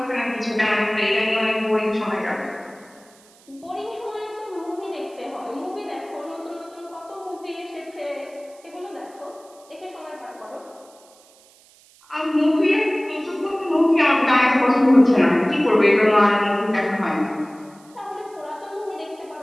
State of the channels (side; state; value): right; noise; hiss, 28 dB below the sound